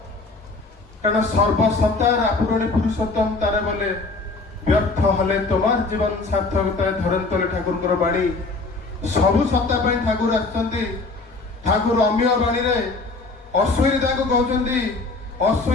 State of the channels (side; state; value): right; quieter; 3.6 dB